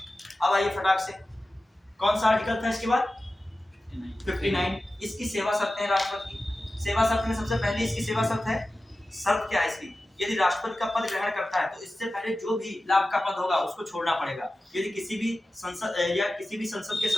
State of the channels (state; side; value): normal; both; correlation 0.94